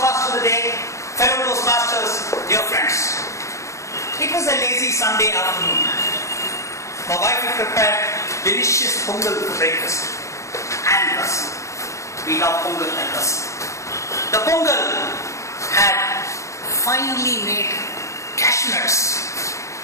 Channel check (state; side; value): late; right; 0.15 ms